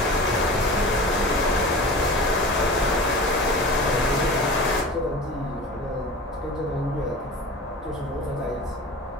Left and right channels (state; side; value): normal; both; correlation 0.35